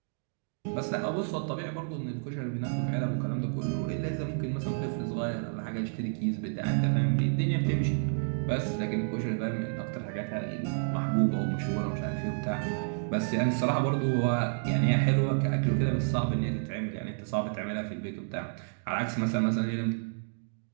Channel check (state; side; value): silent; left; digital silence